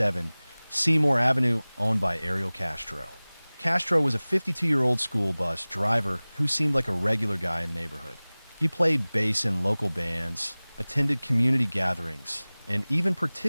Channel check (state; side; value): inverted; both; correlation -1.00